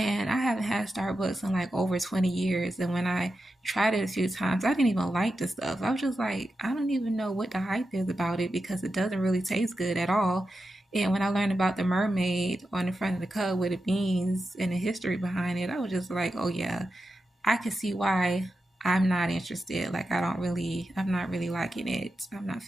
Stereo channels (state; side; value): normal; both; correlation 0.90